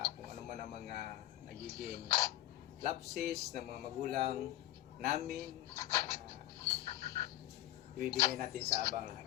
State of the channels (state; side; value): quieter; right; 14.9 dB